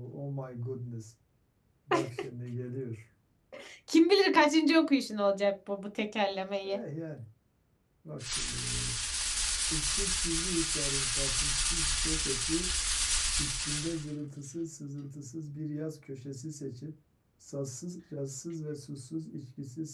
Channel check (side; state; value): both; identical; correlation 1.00